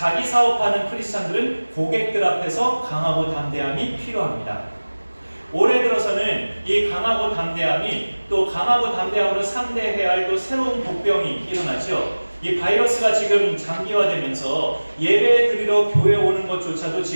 사업하는 크리스찬들은 고객들 앞에서 강하고 담대함이 필요합니다. 올해 들어서는 이 강하고 담대함이 또 강하고 담대함으로 상대해야 할 또 새로운 복병이 일어나죠. 이 바이러스가 지금 장기화되면서 예배 드리러 교회 오는 것조차도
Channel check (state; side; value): inverted; both; correlation -1.00